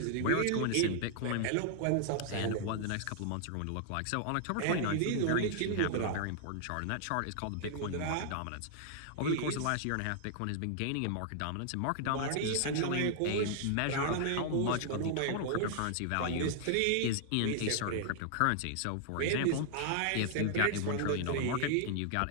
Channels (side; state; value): both; different; correlation -0.01